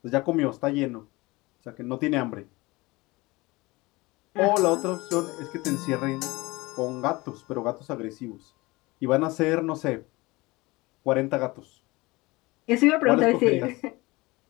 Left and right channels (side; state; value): right; quieter; 22.4 dB